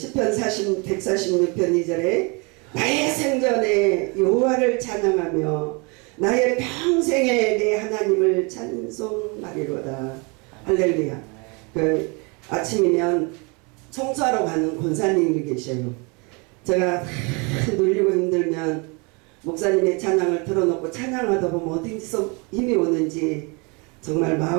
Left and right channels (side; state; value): left; quieter; 30.7 dB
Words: 146편 2절에 나의 생전에 여호와를 찬양하며 나의 평생에 내 하나님을 찬송하리로다. 할렐루야. 그 아침이면 청소하러 가는 권사님이 계셔요. 제가 눌리고 힘들면 목사님의 찬양을 틀어놓고 찬양하다 보면 어디서 힘이 오는지 정말